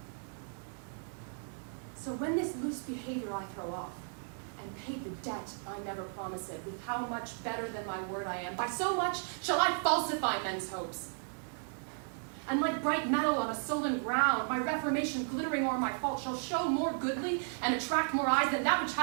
So when this loose behavior I throw off, and pay the debt I never promised, with how much better than my word I am, by so much shall I falsify men's hopes. And like bright metal on a sullen ground, my reformation glittering o'er my fault shall show more goodly and attract more eyes than that which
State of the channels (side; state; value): left; silent; 55 dB below the other